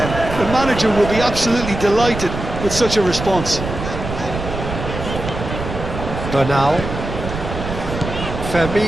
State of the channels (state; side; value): noise; right; rumble, 7 dB below the sound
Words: The manager will be absolutely delighted with such a response. Bernal.